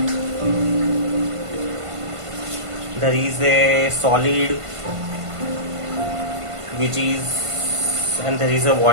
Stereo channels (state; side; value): late; left; 1.5 ms